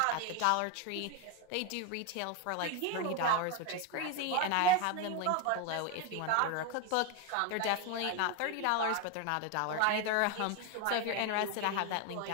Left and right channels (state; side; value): different; both; correlation 0.02